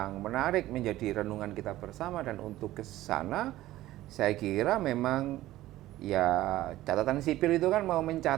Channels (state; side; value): quieter; left; 15.5 dB